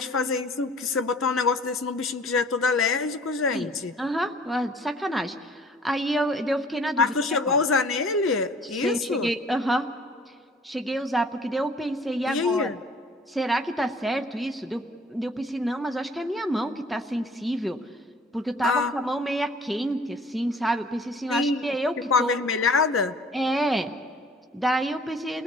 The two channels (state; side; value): normal; both; correlation 0.52